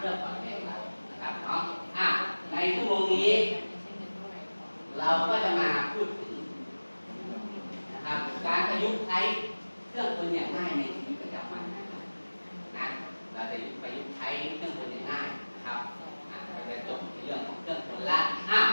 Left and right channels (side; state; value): both; inverted; correlation -1.00